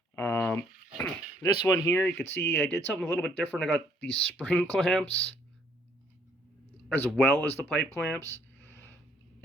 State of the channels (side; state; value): both; normal; correlation 0.65